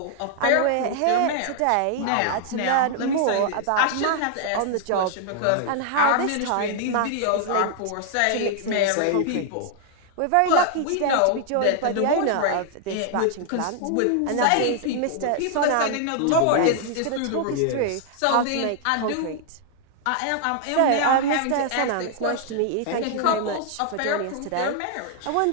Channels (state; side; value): different; both; correlation 0.00